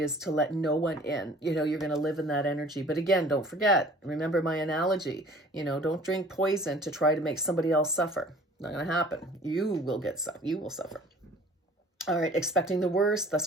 to let no one in. You're going to live in that energy. But again, don't forget, remember my analogy, don't drink poison to try to make somebody else suffer. Not going to happen. You will suffer. All right. Expecting the worst, thus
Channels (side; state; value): both; normal; correlation 0.49